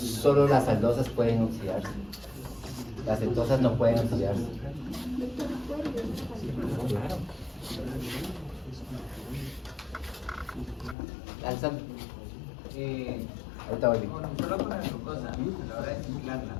las aldosas pueden oxidarse. Las cetosas no pueden oxidarse. Claro. Alza. Ahorita voy. Solo con la glucosa, a la hora de mezclarla,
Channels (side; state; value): right; drops out; at 11.0 s